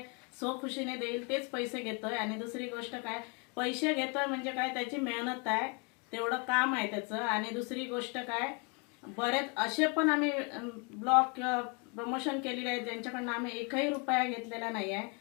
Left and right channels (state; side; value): quieter; right; 33.4 dB